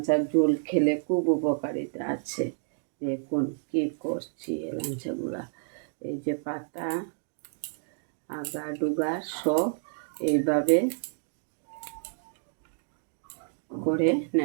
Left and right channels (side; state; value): left; silent; digital silence